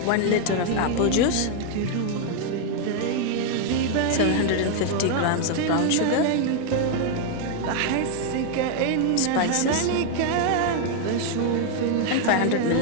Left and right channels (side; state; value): both; different; correlation 0.00